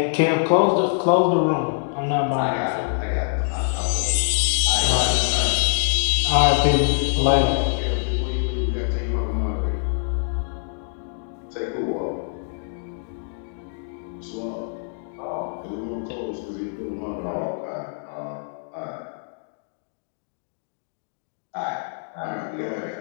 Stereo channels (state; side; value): silent; right; digital silence